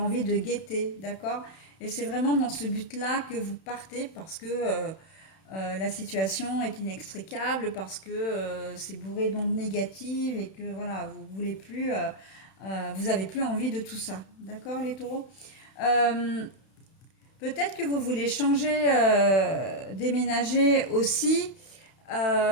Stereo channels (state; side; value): late; right; 31 ms